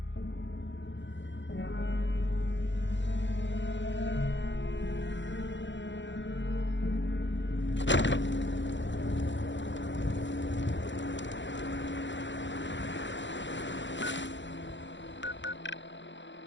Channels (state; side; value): late; right; 0.54 ms